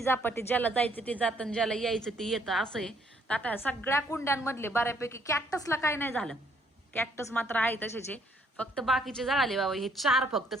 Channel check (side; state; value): both; normal; correlation 0.66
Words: जापाटी, ज्याला जायचं ते जातं, ज्याला यायचं ते येतं असं आहे. तर आता सगळ्या कुंड्यांमधले बऱ्यापैकी कॅक्टसला काय नाही झालं. कॅक्टस मात्र आहे तसेच आहे, फक्त बाकीचे जळाले बाबा. हे 4 फक्त